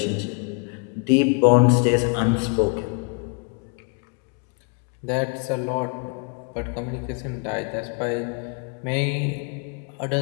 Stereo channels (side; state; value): right; quieter; 36.9 dB